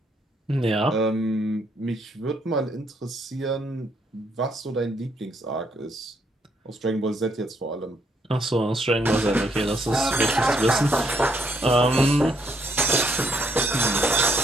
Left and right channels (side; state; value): both; normal; correlation 0.72